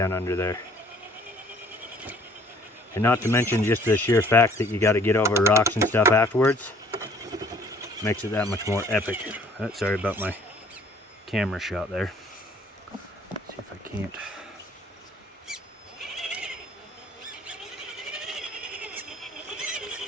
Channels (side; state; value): both; normal; correlation 0.57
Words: under there. And not to mention just the sheer fact that you got to get over rocks and stuff afterwards makes it that much more epic. Sorry about my camera shot there. Let's see if I can't.